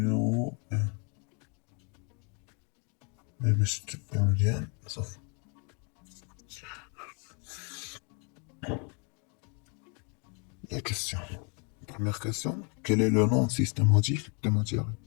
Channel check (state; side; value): quieter; right; 35.6 dB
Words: 1. باش تبقى مزيان صافي. La question. Première question. Quel est le nom systématique des matières?